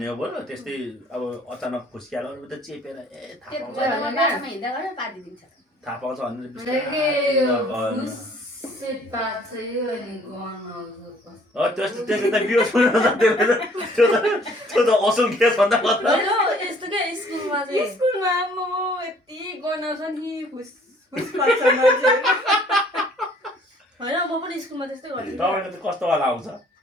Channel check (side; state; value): both; normal; correlation 0.58